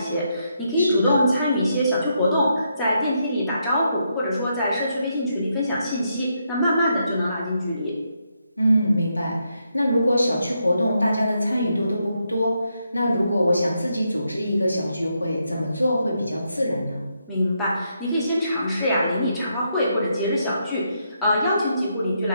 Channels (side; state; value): both; inverted; correlation -0.80